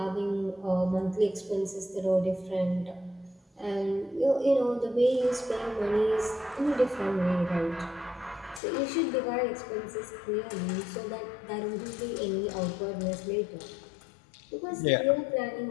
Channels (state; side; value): drops out; right; at 8.6 s